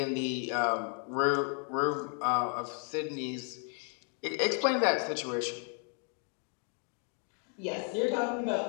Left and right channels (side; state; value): right; quieter; 39.9 dB